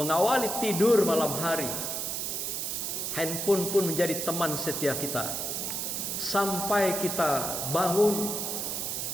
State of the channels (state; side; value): noise; right; hiss, 2 dB below the sound